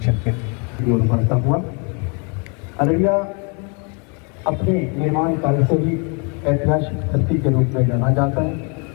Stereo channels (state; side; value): quieter; right; 35.4 dB